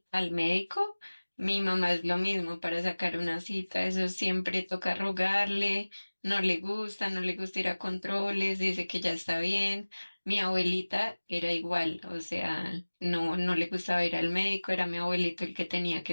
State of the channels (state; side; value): inverted; both; correlation -1.00